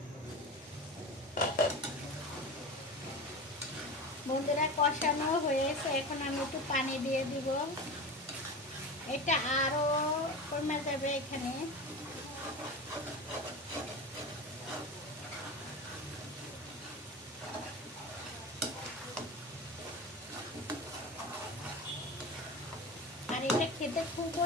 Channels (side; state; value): both; normal; correlation 0.29